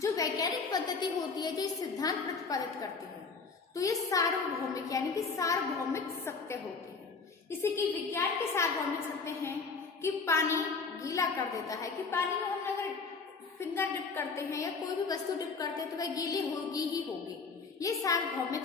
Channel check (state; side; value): quieter; right; 4.7 dB